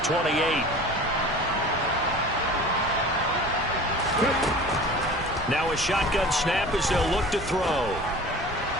28. Now a shotgun snap as they'll look to throw.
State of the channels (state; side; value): normal; both; correlation 0.40